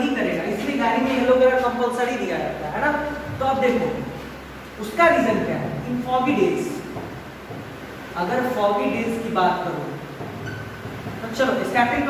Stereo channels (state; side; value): identical; both; correlation 1.00